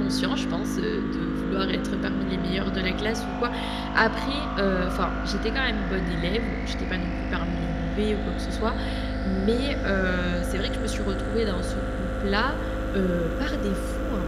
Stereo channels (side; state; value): both; identical; correlation 1.00